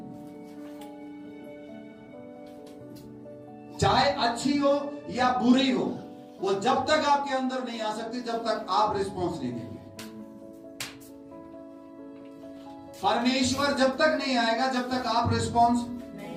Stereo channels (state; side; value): identical; both; correlation 1.00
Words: चाहे अच्छी हो या बुरी हो, वो जब तक आपके अंदर नहीं आ सकती जब तक आप रिस्पॉन्स नहीं देंगे। परमेश्वर जब तक नहीं आएगा जब तक आप रिस्पॉन्स